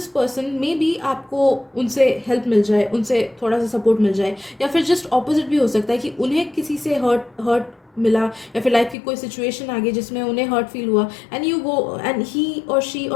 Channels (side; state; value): right; drops out; at 9.0 s